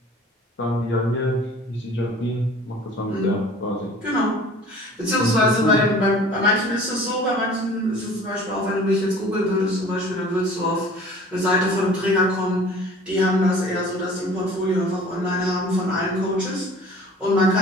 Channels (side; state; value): both; normal; correlation 0.47